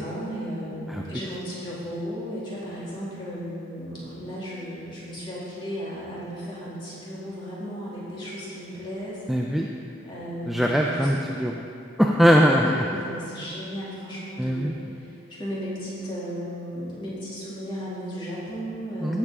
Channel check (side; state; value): both; normal; correlation 0.80